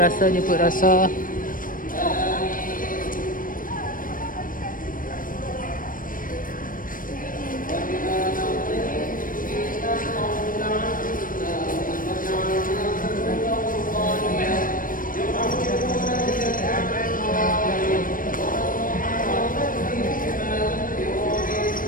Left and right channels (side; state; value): right; late; 0.40 ms